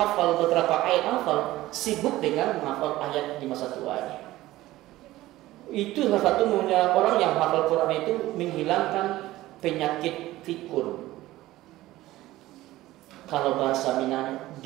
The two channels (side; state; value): left; quieter; 16.6 dB